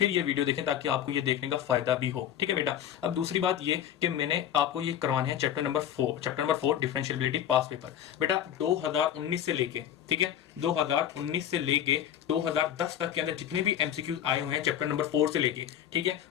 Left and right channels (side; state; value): right; quieter; 10.3 dB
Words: ये वीडियो देखें ताकि आपको ये देखने का फायदा भी हो, ठीक है बेटा। अब दूसरी बात ये कि मैंने आपको ये करवाने हैं chapter number 4 differentiability past paper. बेटा 2019 से लेके, ठीक है, 2019 से लेके 2010 तक के अंदर जितने भी एमसीक्यूज आए हुए हैं चैप्टर नंबर 4 से लेके, ठीक है,